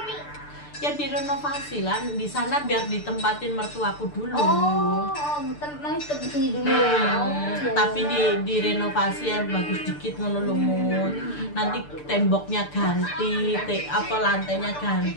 ya direnovasi lah di sana biar ditempatin mertuaku dulu. Masih di sini dulu. Iya, Tapi iya. direnovasi yang bagus dikit ngono lho, Mut. Nanti temboknya ganti, lantainya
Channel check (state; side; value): late; right; 6.8 ms